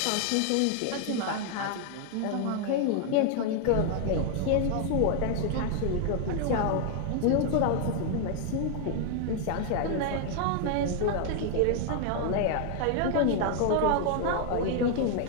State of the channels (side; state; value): both; different; correlation 0.00